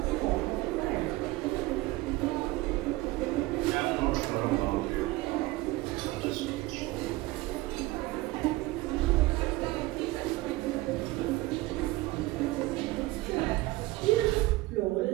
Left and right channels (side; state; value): left; quieter; 19.5 dB